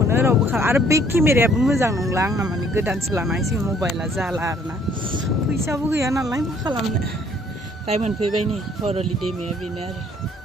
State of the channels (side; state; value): both; normal; correlation 0.61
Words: रावबो आरो बे केमेरायाबो मोजां नंला आंना माने गोदानसो लानांसिगोन मबाइला जाला आरोना फैसाबो गैया नालाय मा खालामनो दाय मोनफैबाय नै हरलि दैमाया बेनो आरो